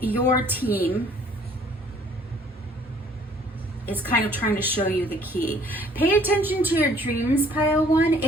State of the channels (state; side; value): normal; both; correlation 0.58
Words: your team is kind of trying to show you the key. Pay attention to your dreams, pile one.